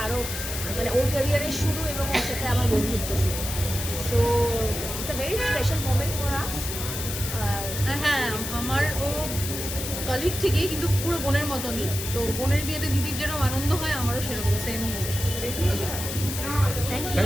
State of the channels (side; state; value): left; noise; hiss, 6 dB below the sound